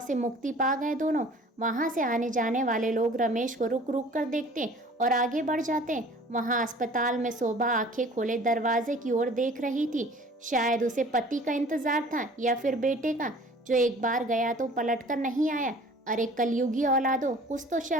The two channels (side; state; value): both; normal; correlation 0.48